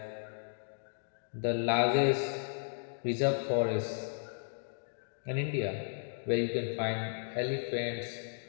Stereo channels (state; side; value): silent; right; digital silence